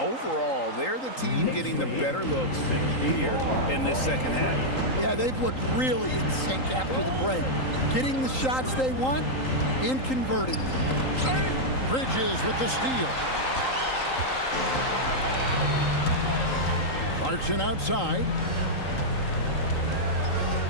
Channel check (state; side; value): late; right; 3.8 ms